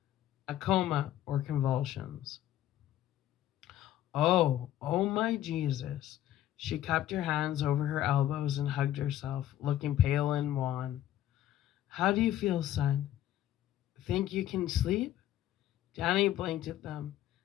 A coma or convulsions. Oh my Jesus. She cupped her hands over her elbows and hugged herself, looking pale and wan. How do you feel, son? Think you can sleep? Danny blinked at them.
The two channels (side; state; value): right; quieter; 12.6 dB